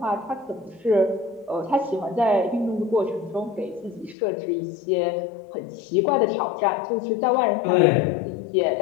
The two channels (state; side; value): drops out; right; at 4.2 s